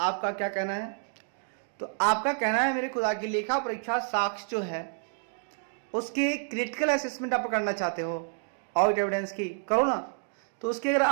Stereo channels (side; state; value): left; silent; 58 dB below the other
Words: क्या कहना है? तो आपका कहना है मेरे खुदा की लेखा परीक्षा साक्ष्य जो है उसके क्रिटिकल असेसमेंट आप करना चाहते हो, ऑडिट एविडेंस की करो ना। तो उसके अगर